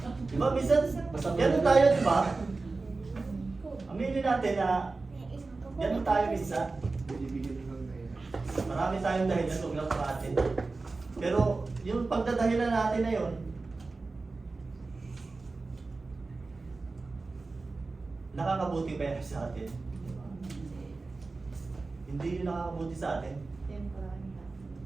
di ba, minsan, ganun tayo, di ba? Aminin natin na ganun tayo minsan. Marami tayong dahilan, huwag lang sa atin. Pero yung pagdadahilan natin na yun, nakakabuti ba yan sa atin? Diba? Hindi yun nakakabuti sa atin.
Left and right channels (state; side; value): quieter; left; 3.7 dB